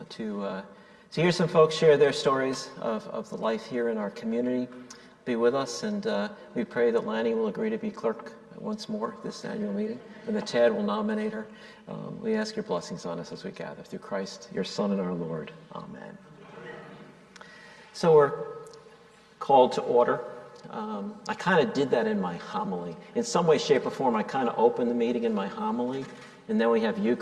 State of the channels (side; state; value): both; identical; correlation 1.00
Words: to hear some folks share their stories of the life here in our community. Be with us, and we pray that Lanny will agree to be clerk once more this annual meeting, and that Tad will nominate her. We ask your blessings on us as we gather through Christ, your Son and our Lord. Amen. So we're called to order. I kind of did that in my homily. In some way, shape, or form, I kind of opened the meeting in my homily, and then we have